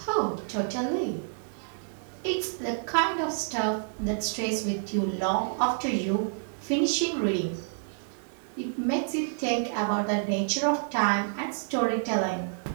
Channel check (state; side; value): silent; left; digital silence